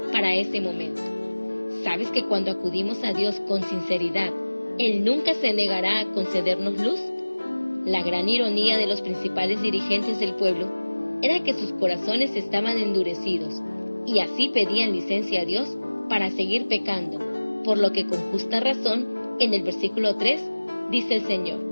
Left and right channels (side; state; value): both; inverted; correlation -1.00